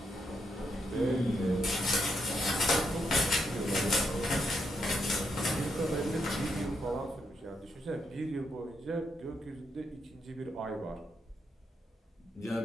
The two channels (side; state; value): both; normal; correlation 0.79